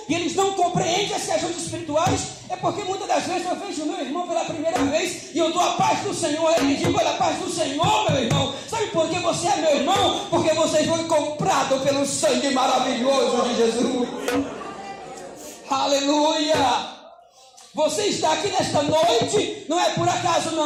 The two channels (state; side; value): identical; both; correlation 1.00